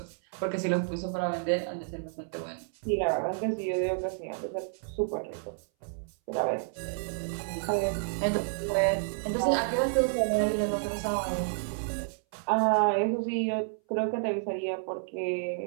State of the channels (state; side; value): silent; left; 58 dB below the other